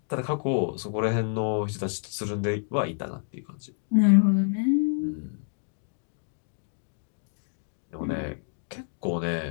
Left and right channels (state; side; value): silent; right; 57 dB below the other